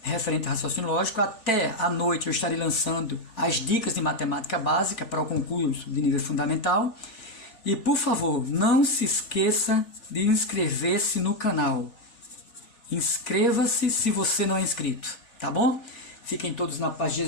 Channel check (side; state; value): right; late; 3.4 ms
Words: referente a raciocínio lógico. Até à noite eu estarei lançando as dicas de matemática básica para o concurso de nível fundamental. E, por favor, não se esqueça de inscrever-se no canal. Inscreva-se se você não é inscrito, tá bom? Fiquem todos na paz de